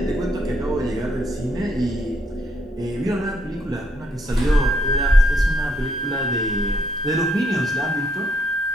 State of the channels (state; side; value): normal; both; correlation 0.72